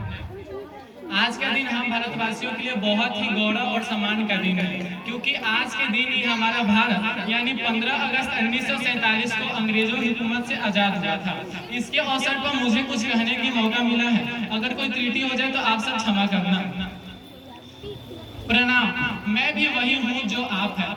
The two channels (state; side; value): identical; both; correlation 1.00